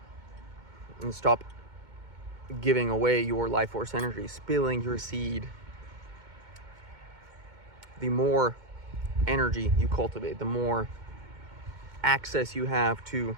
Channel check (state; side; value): late; left; 2.2 ms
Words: and stop giving away your life force energy, spilling your seed, the more energy you cultivate, the more access you have to